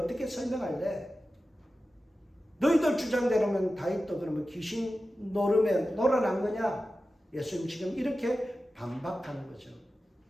설명할래? 너희들 주장대로면 다윗도 그러면 귀신 노름에 놀아난 거냐? 예수님 지금 이렇게 반박하는 거죠.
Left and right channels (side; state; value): both; normal; correlation 0.94